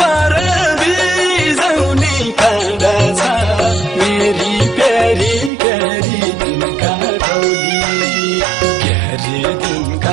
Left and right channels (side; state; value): left; drops out; at 5.5 s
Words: बिजाउने काँडा छ, मेरी प्यारी क्यारी दिनका टौली, क्यारी